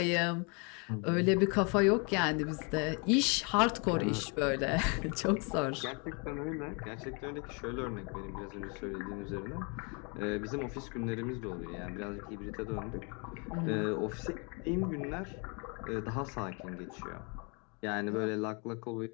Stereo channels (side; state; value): right; quieter; 33.9 dB